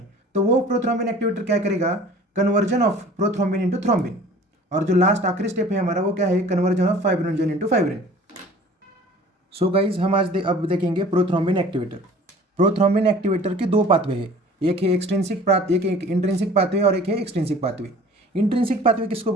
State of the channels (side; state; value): both; normal; correlation 0.47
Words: तो वो प्रोथ्रोम्बिन एक्टिवेटर क्या करेगा? Conversion of prothrombin into thrombin. और जो लास्ट आखिरी स्टेप है हमारा, वो क्या है? Conversion of fibrinogen into fibrin. So guys, हम आज अब देखेंगे प्रोथ्रोम्बिन एक्टिवेटर। प्रोथ्रोम्बिन एक्टिवेटर के 2 पाथवे है, एक है एक इंट्रिंसिक पाथवे और एक है एक्सट्रिंसिक पाथवे। इंट्रिंसिक पाथवे किसको